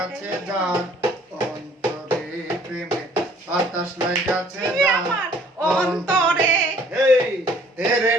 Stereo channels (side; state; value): both; normal; correlation 0.58